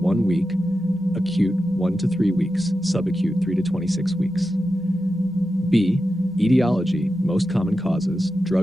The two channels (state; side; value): normal; both; correlation 0.91